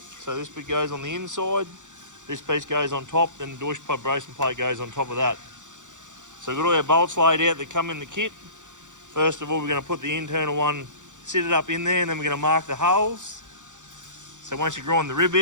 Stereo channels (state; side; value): late; left; 0.86 ms